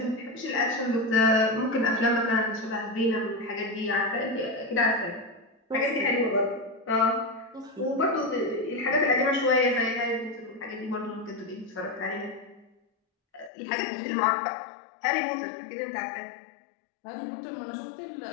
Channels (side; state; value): right; drops out; at 13.5 s